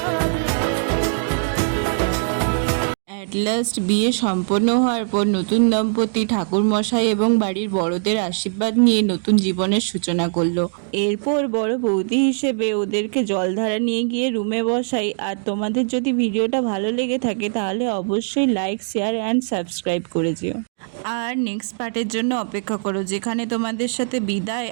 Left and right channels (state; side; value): silent; left; digital silence